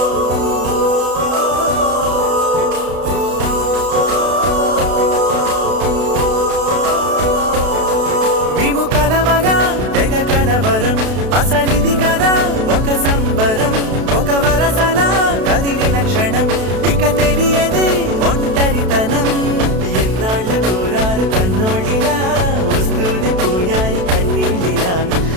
మేము కలవగా తెగ కలవరం అసలిది కదా ఒక సంబరం ఒక వరసలా కదిలిన క్షణం ఇక తెలియదే ఒంటరితనం ఎన్నాళ్ళ కోరాలు కన్నోళ్ళిలా వస్తూనే పోయాయి కన్నీళ్ళిలా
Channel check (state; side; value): late; left; 32 ms